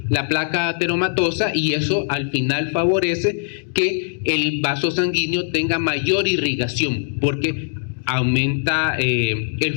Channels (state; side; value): silent; right; digital silence